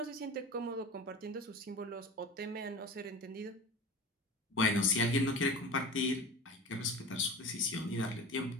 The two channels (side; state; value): both; normal; correlation 0.34